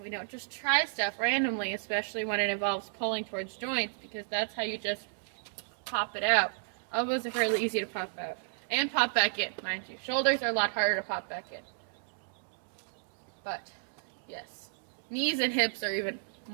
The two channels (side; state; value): left; silent; digital silence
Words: We don't just try stuff randomly, especially when it involves pulling towards joints, because that's how you just pop it out. Elbows are fairly easy to pop out. And pop back in, mind you. Shoulders are a lot harder to pop back in. But, yes. Knees and hips are even